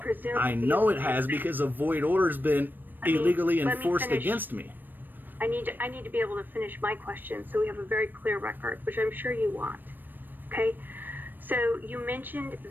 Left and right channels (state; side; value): late; left; 0.092 ms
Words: I know it has because a void order has been illegally enforced against me. I need to be able to finish my question so we have a very clear record, which I'm sure you want. Okay? So you mentioned